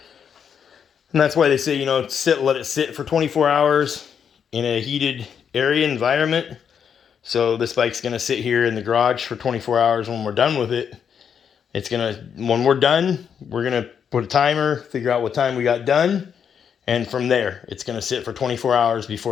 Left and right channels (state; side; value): quieter; right; 7.5 dB